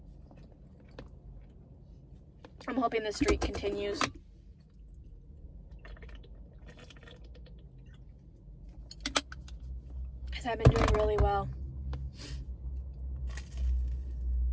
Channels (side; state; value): both; identical; correlation 1.00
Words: I'm hoping this streak continues. Because I've been doing really well.